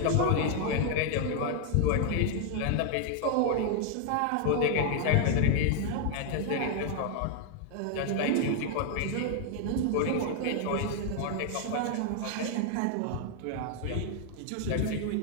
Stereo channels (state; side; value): different; both; correlation 0.00